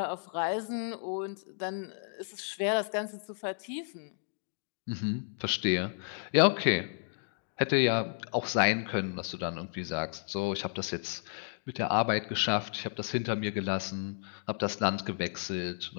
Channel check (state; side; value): silent; right; digital silence